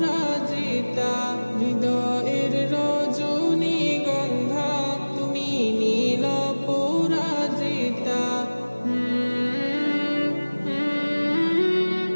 হৃদয়ের রজনীগন্ধা তুমি নীল পরাজিতা।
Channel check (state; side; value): inverted; both; correlation -1.00